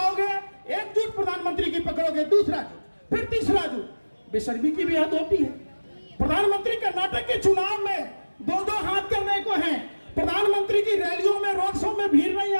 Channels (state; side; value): inverted; both; correlation -1.00